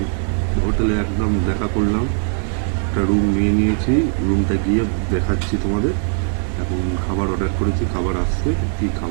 হোটেলে একদম দেখা করলাম, একটা রুম নিয়ে নিয়েছি, রুমটা গিয়ে দেখাচ্ছি তোমাদের। এখন খাবার অর্ডার করেছি, খাবার আসছে, কী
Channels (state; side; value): silent; left; 56 dB below the other